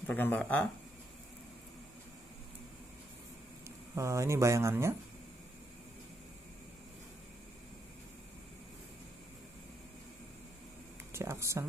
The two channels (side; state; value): both; normal; correlation 0.78